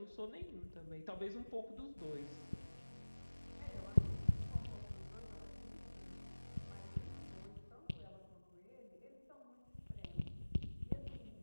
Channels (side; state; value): both; inverted; correlation -1.00